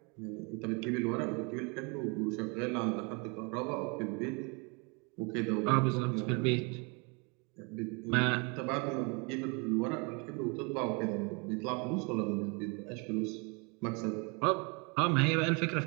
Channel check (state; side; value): quieter; left; 31.9 dB